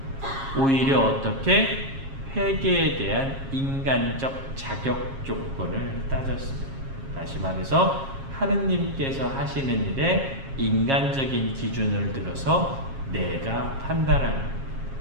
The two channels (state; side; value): late; left; 7.4 ms